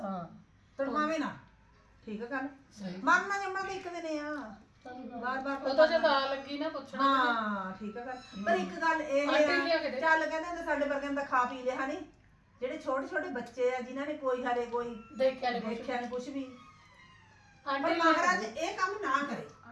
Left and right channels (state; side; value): identical; both; correlation 1.00